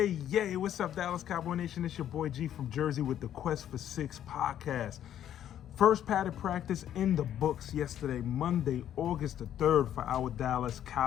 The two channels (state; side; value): quieter; right; 10.7 dB